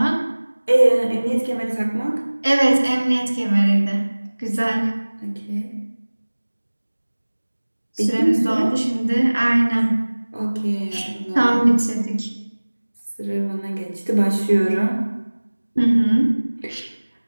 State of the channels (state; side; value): inverted; both; correlation -1.00